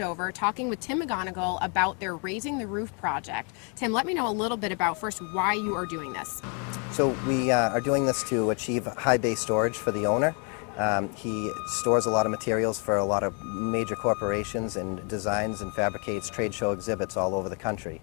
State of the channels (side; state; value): right; quieter; 37.2 dB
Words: talking with Tim McGonigal about their Raising the Roof project. Tim, let me know a little bit about first why you are doing this. So we are doing this to achieve high bay storage for the owner. He stores a lot of materials for a lot of major corporations and designs and fabricates trade show exhibits all over the country.